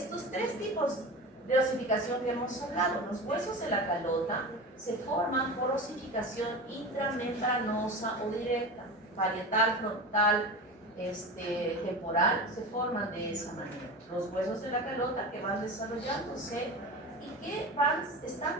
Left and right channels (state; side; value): normal; both; correlation 0.29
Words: tres tipos de osificación que hemos hablado. Los huesos de la calota se forman por osificación intramembranosa o directa, parietal, frontal, temporal, se forman de esa manera. Los huesos de la calota que van desarrollándose y que van